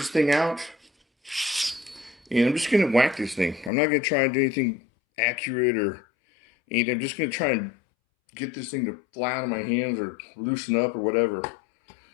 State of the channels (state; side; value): drops out; right; at 3.7 s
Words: thing out, and I'm just going to whack this thing. I'm not going to try and do anything accurate or anything. I'm just going to try and get this thing to fly out of my hands or loosen up or whatever.